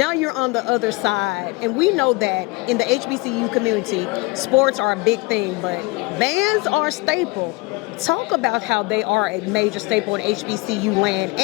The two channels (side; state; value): right; quieter; 24.3 dB